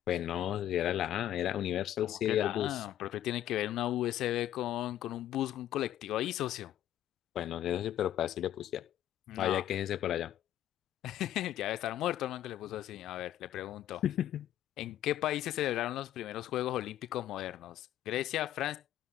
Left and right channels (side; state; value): right; quieter; 12.3 dB